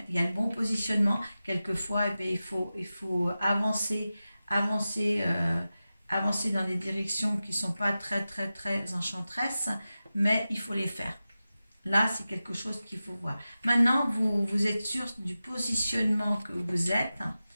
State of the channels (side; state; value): both; inverted; correlation -0.94